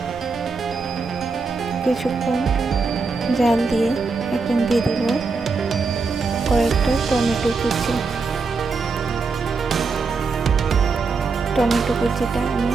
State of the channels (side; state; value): left; quieter; 4.4 dB